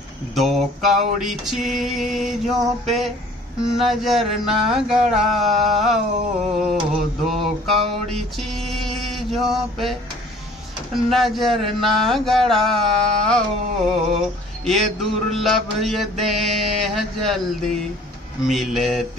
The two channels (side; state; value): both; normal; correlation 0.52